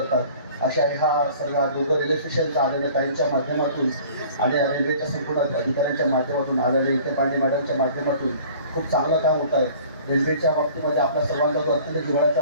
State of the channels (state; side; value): inverted; both; correlation -0.48